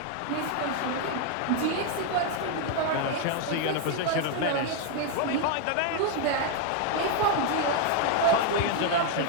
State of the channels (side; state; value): both; different; correlation 0.00